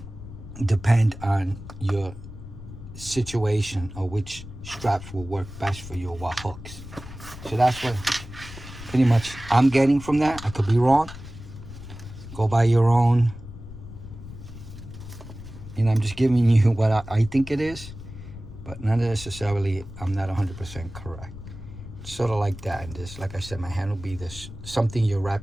depend on your situation or which straps will work best for you or what hooks. So that's what pretty much I'm getting from that. I could be wrong. Go by your own. And I'm just giving you what I think it is, but not necessarily, I'm not 100% correct. Sort of like that. And this, like I said, my hand will be this, something you're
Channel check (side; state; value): left; noise; rumble, 13 dB below the sound